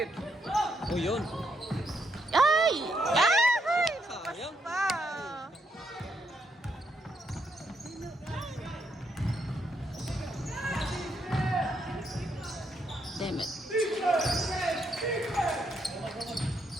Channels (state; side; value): normal; both; correlation 0.77